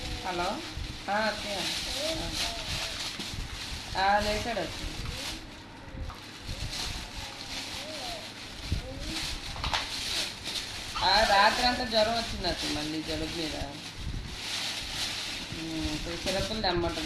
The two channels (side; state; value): both; identical; correlation 1.00